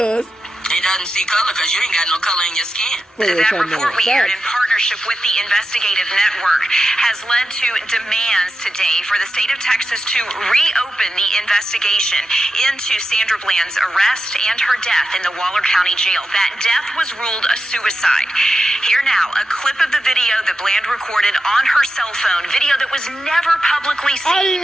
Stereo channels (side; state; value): both; normal; correlation 0.90